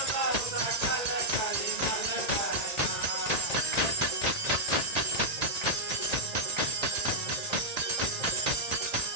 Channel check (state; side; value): late; left; 1.8 ms